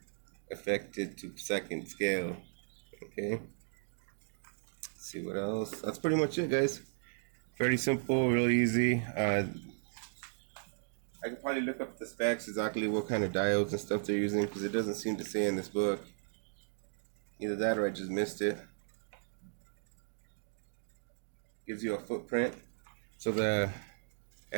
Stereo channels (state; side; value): silent; left; digital silence